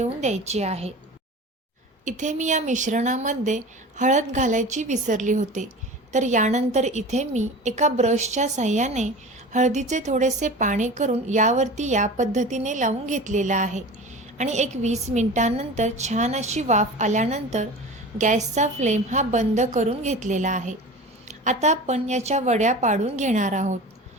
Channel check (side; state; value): both; normal; correlation 0.35